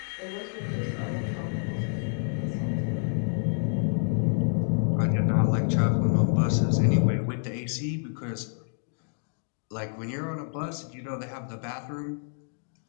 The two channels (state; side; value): silent; right; digital silence